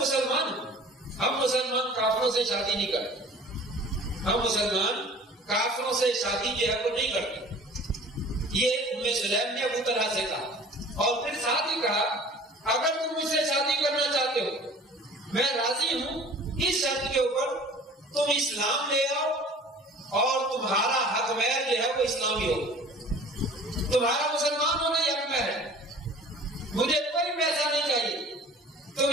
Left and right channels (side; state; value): both; normal; correlation 0.46